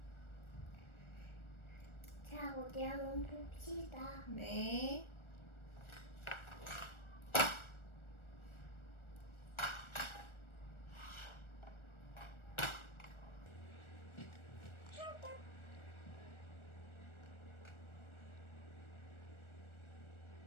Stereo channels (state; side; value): late; right; 1.4 ms